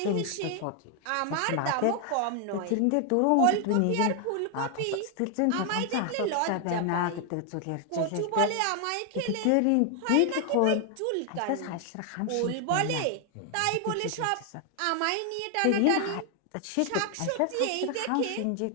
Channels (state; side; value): different; both; correlation 0.00